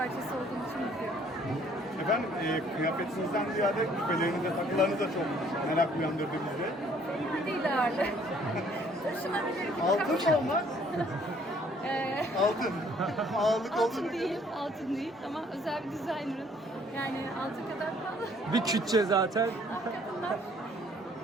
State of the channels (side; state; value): both; normal; correlation 0.61